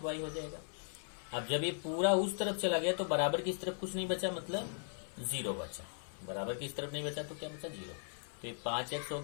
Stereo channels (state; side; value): silent; right; 52 dB below the other